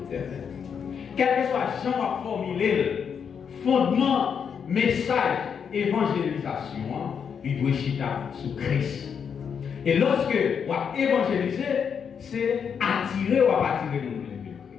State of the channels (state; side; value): quieter; right; 7.0 dB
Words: éternelle. Quel que soit Jean a formulé le fondement, message, évangélisation, il doit chiter sur Christ. Et lorsque on va évangéliser, c'est attirer ou attirer nous de